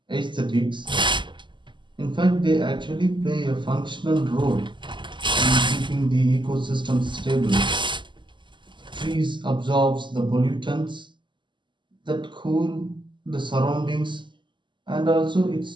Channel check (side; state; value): left; late; 0.23 ms